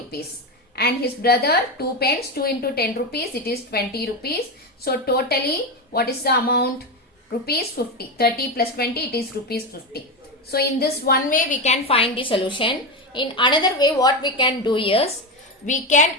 And his brother, 2 pens, 2 into 10 rupees, it is 20 rupees. So totally, what is the amount? Rupees 50. 30 plus 20, it is rupees 50. So in this one way, we can find the solution. In another way, what we can do is, we can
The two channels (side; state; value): both; normal; correlation 0.15